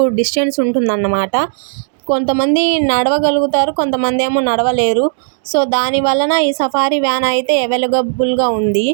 డిస్టెన్స్ ఉంటుందన్నమాట. కొంతమంది నడవగలుగుతారు, కొంతమంది ఏమో నడవలేరు. సో దాని వలన ఈ సఫారీ వ్యాన్ అయితే అవైలబుల్గా ఉంది.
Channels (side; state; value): left; silent; digital silence